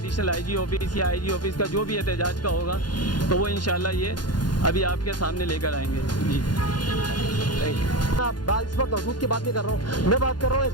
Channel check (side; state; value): right; late; 0.71 ms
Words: IG ऑफिस या IG ऑफिस का जो भी एहतजाज का होगा, तो वो इंशाल्लाह ये अभी आपके सामने लेकर आएंगे। जी इस वक्त हदूद की बात नहीं कर रहा हूँ, मैं बात कर रहा हूँ